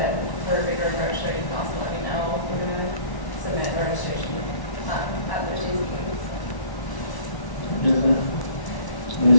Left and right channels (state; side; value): late; right; 1.1 ms